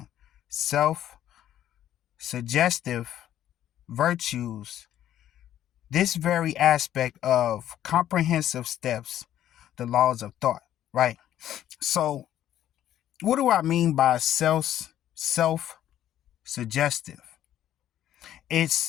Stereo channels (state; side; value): quieter; right; 11.8 dB